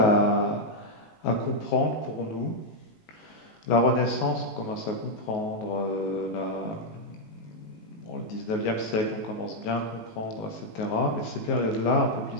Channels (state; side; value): late; right; 19 ms